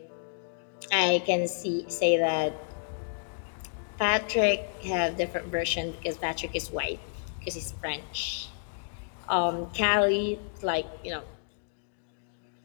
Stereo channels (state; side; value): silent; right; digital silence